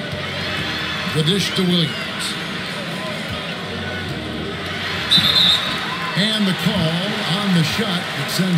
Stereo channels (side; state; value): both; identical; correlation 1.00